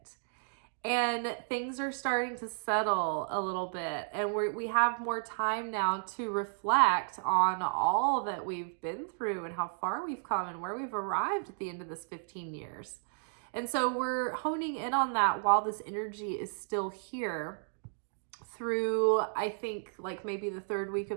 And things are starting to settle a little bit. And we have more time now to reflect on all that we've been through and how far we've come and where we've arrived at the end of this 15 years. And so we're honing in on that while this energy is still here through, I think, like maybe the 3rd week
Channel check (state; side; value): silent; left; digital silence